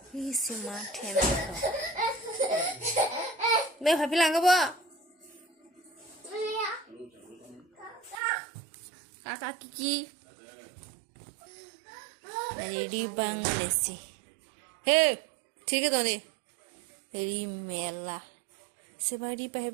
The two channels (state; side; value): drops out; left; at 8.2 s